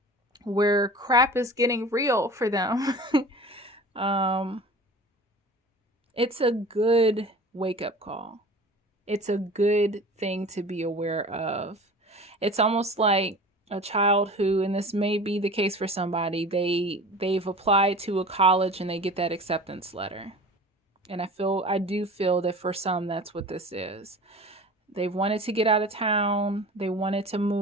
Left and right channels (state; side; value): normal; both; correlation 0.39